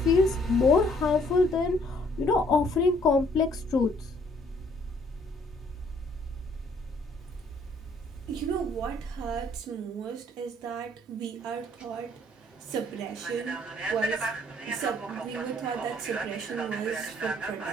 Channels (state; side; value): normal; both; correlation 0.63